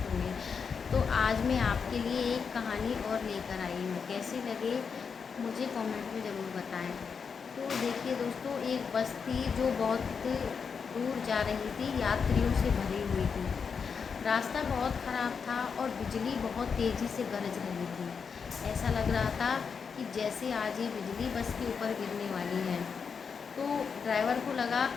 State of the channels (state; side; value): quieter; right; 6.0 dB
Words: होंगे। तो आज मैं आपके लिए एक कहानी और लेकर आई हूँ। कैसी लगे मुझे कमेंट में ज़रूर बताएं। तो देखिए दोस्तों, एक बस थी जो बहुत दूर जा रही थी, यात्रियों से भरी हुई थी। रास्ता बहुत ख़राब था और बिजली बहुत तेज़ी से गरज रही थी। ऐसा लग रहा था कि जैसे आज ये बिजली बस के ऊपर गिरने वाली है। तो ड्राइवर को लगा